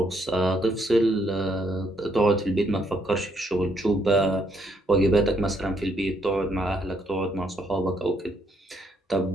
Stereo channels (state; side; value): normal; both; correlation 0.72